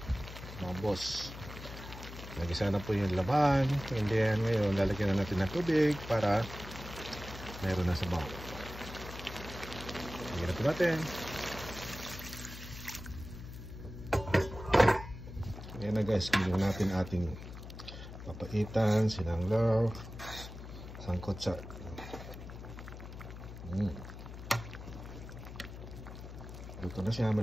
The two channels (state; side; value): noise; left; hum, 12 dB below the sound